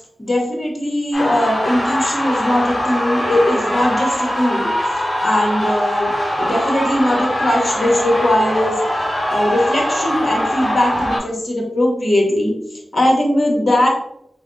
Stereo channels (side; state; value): both; normal; correlation 0.94